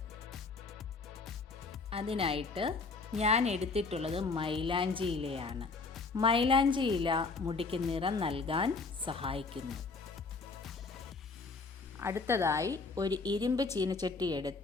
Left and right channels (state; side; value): quieter; right; 4.1 dB